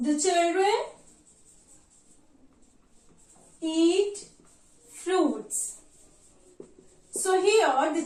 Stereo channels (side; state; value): both; identical; correlation 1.00